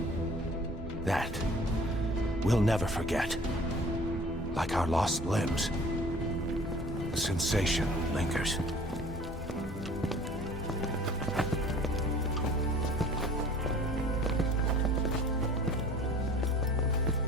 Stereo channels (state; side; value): normal; both; correlation 0.48